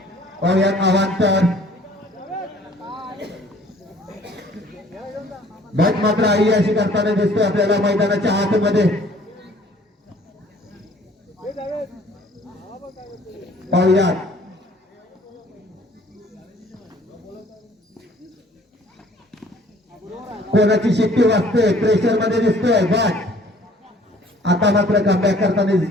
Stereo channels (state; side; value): normal; both; correlation 0.55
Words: अवांतर. भट मात्र आई अशी करताना दिसतोय आपल्याला मैदानाच्या आतमध्ये. पाहूयात कोणाची शिट्टी वाजते. प्रेशर मध्ये दिसतोय भट. आता मात्र कमबॅक करताना